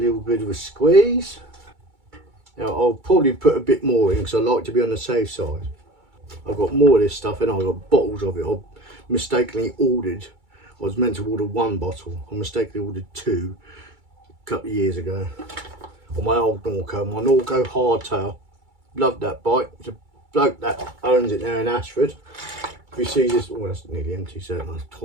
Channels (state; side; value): late; left; 2.3 ms